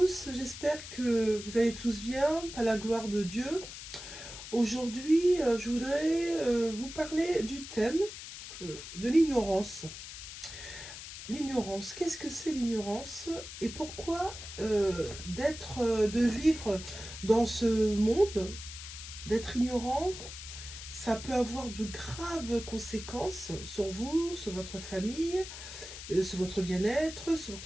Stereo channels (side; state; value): left; noise; hiss, 11 dB below the sound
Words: j'espère que vous allez tous bien, par la gloire de Dieu. Aujourd'hui, je voudrais vous parler du thème de l'ignorance. L'ignorance, qu'est-ce que c'est l'ignorance et pourquoi de vivre dans ce monde, d'être ignorant, ça peut avoir de graves conséquences sur vous, sur votre famille, sur votre bien-être, sur